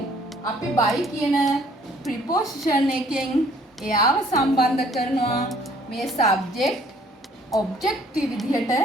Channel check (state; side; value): normal; both; correlation 0.59